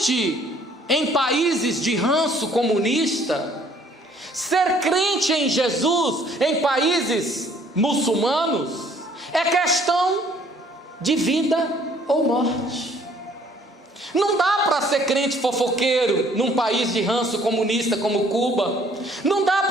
em países de ranço comunista, ser crente em Jesus em países muçulmanos, é questão de vida ou morte. Não dá para ser crente fofoqueiro num país de ranço comunista como Cuba. Não dá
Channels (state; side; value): normal; both; correlation 0.60